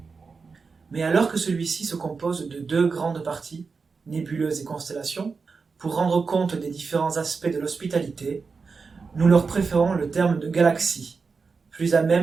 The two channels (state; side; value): quieter; left; 4.8 dB